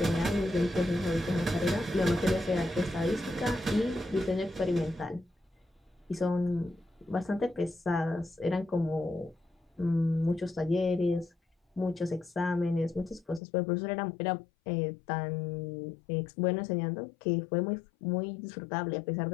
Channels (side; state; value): right; drops out; at 13.4 s